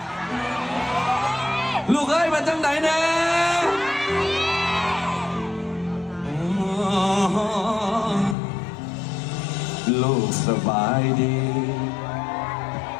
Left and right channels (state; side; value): drops out; right; at 8.3 s